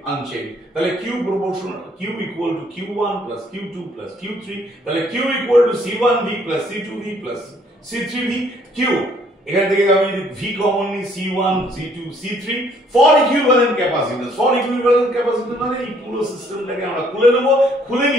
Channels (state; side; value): normal; both; correlation 0.63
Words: unchanged. তাহলে Q proportional, Q equal to Q1 plus Q2 plus Q3, তাহলে Q equal to C1V plus C2V plus C3V, Q এখান থেকে আমি যদি V কমন নিই, C1 C2 C3 for equivalent capacitance. For equivalent capacitance মানে এই পুরো সিস্টেমটাকে আমরা খুলে নেব, খুলে